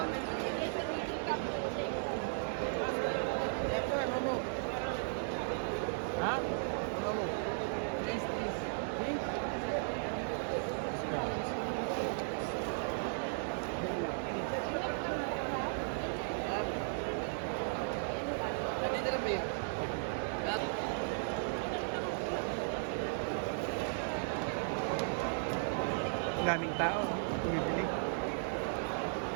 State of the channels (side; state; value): left; silent; digital silence